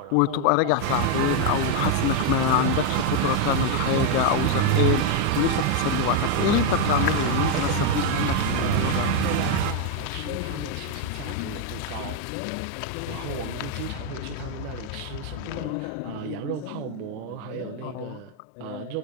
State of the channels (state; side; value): different; both; correlation 0.01